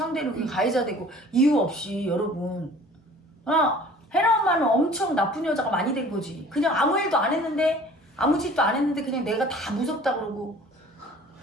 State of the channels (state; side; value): normal; both; correlation 0.48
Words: 그게 가해자 되고 이유 없이 여러분. 혜라 엄마는 엄청 나쁜 여자가 많이 된 거지. 그냥 아무 일도 안 했는데 아무 짓도 안 했는데 그냥 내가 다 무섭다 그러고